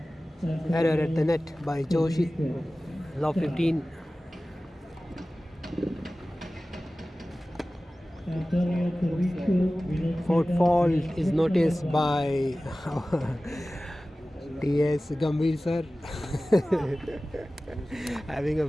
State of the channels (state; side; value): normal; both; correlation 0.97